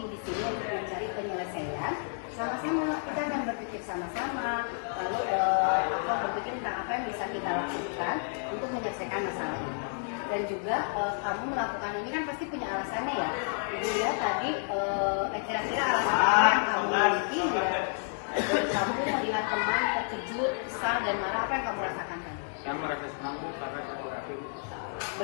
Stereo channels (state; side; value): silent; right; 57 dB below the other